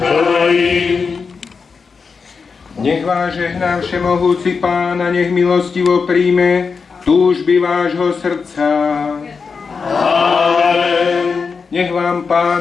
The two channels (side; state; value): right; quieter; 5.2 dB